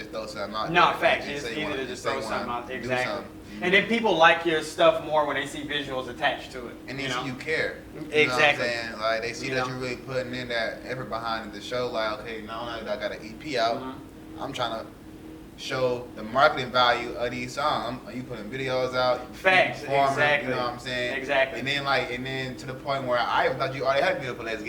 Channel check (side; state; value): both; identical; correlation 1.00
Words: throw something out. No, there. facts. You It's say you easy wanna- to you just say throw you wanna something out. do Exactly. something. And then people like your stuff more when they see visuals attached to it. And they you see know? you care. Exactly. You know what I'm saying? Like they see You that know? you're really putting in that effort behind the show. Like, okay, now that I got an EP out, I'm trying to show the marketing value of these songs. You putting videos out, you Facts, performing, exactly. You know what I'm saying? Exactly. And then to the point where I even thought you already had a video for Let's